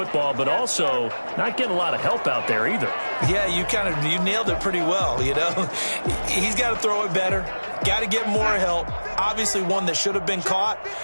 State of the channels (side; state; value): both; inverted; correlation -1.00